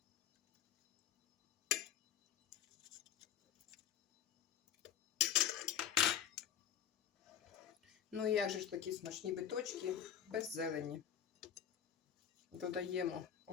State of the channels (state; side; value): quieter; right; 9.5 dB